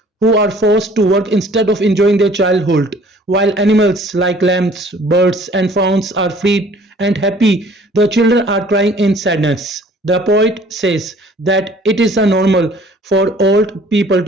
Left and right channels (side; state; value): both; normal; correlation 0.54